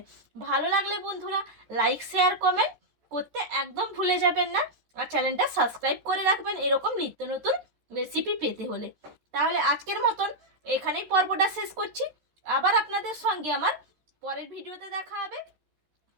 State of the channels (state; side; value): late; left; 13 ms